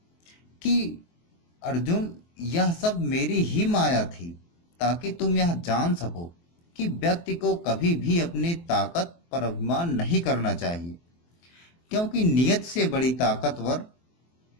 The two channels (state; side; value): late; right; 23 ms